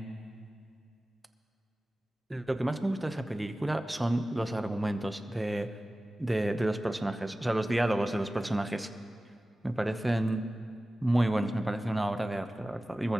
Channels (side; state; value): both; normal; correlation 0.96